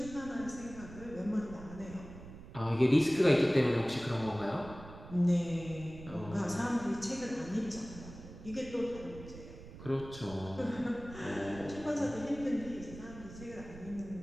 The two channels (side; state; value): right; noise; rumble, 15 dB below the sound